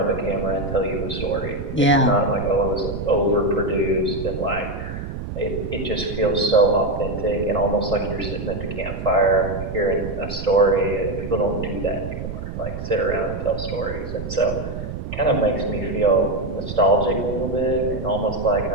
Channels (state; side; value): noise; right; rumble, 7 dB below the sound